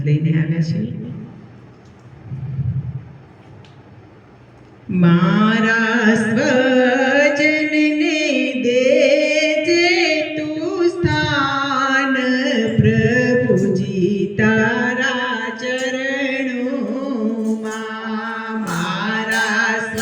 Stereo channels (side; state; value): both; identical; correlation 1.00